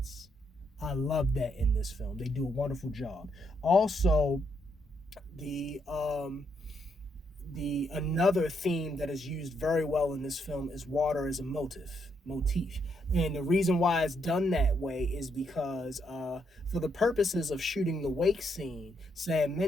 I love that in this film. They do a wonderful job. Also, the another theme that is used very well in this film is water as a motif. And the reason why it's done that way is because for the purposes of shooting the wake scene, Sam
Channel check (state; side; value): normal; both; correlation 0.76